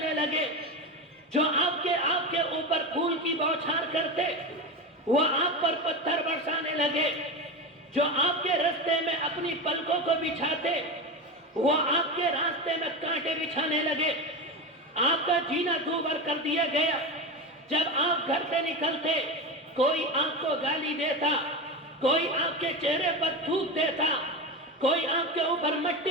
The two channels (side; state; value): both; normal; correlation 0.21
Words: لگے، جو آپ کے اوپر پھول کی بوچھار کرتے وہ آپ پر پتھر برسانے لگے، جو آپ کے راستے میں اپنی پلکوں کو بچھاتے وہ آپ کے راستے میں کانٹے بچھانے لگے، آپ کا جینا دوبر کر دیا گیا۔ جب آپ گھر سے نکلتے کوئی آپ کو گالی دیتا، کوئی آپ کے چہرے پر تھوک دیتا، کوئی آپ کے اوپر